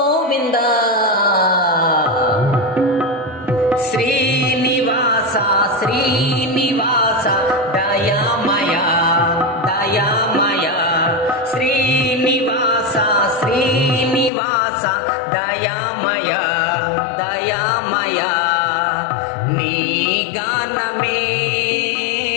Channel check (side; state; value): right; drops out; at 14.3 s